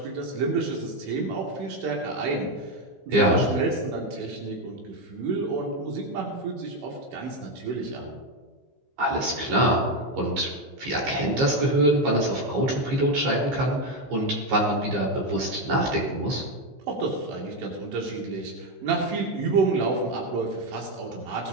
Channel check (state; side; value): late; left; 15 ms